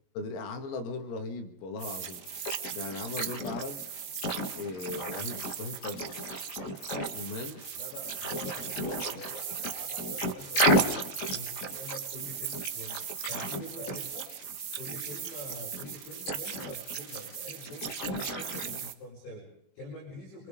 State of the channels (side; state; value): right; late; 21 ms